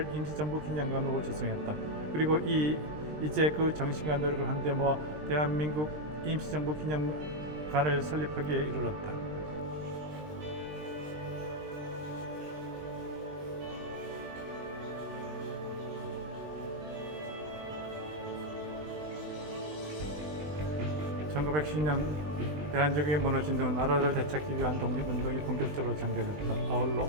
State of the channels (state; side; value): late; left; 20 ms